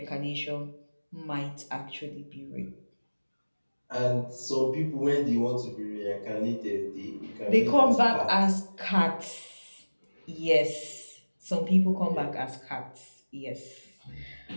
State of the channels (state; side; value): inverted; both; correlation -1.00